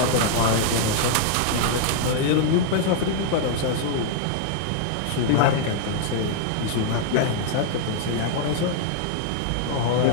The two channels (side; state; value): both; different; correlation -0.01